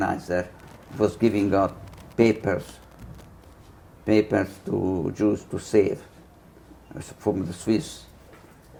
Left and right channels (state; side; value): identical; both; correlation 1.00